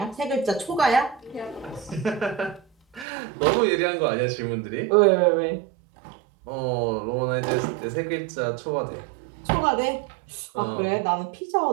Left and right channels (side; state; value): left; drops out; at 3.1 s